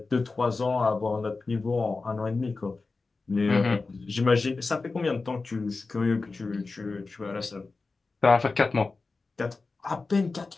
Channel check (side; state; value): right; quieter; 3.9 dB